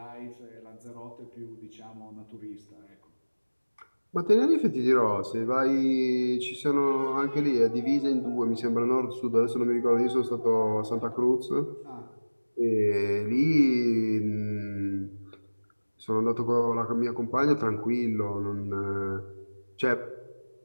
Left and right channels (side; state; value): both; inverted; correlation -1.00